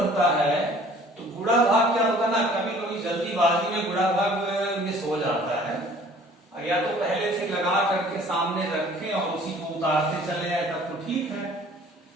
है, तो गुणा भाग क्या होता है ना, कभी कभी जल्दीबाजी में गुणा भाग मिस हो जाता है, या तो पहले से लगा करके सामने रखें और उसी को उतारते चले जाए तब तो ठीक है,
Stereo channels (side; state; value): both; normal; correlation 0.52